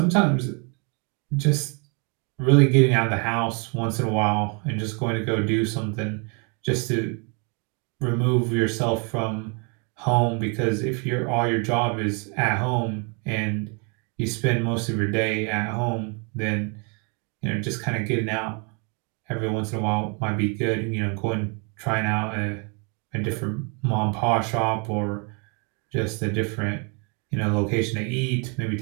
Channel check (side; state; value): left; quieter; 34.2 dB